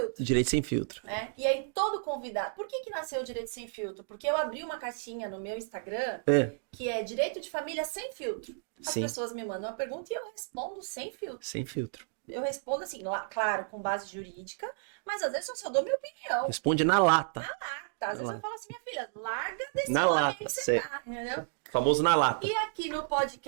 Direito Sem Filtro. E aí todo convidado... Por que nasceu Direito Sem Filtro? Porque eu abri uma caixinha no meu Instagram que é Direito de Família Sem Filtro. As pessoas me mandam uma pergunta e eu respondo sem filtro. Sem filtro. Eu respondo assim, claro, com base jurídica, mas às vezes eu só dou minha opinião. Responde na lata. Na lata. Às vezes eu falo assim, minha filha, larga desse na homem lata, que você tá, entendeu? Famoso na lata. E aqui no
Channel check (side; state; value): left; silent; digital silence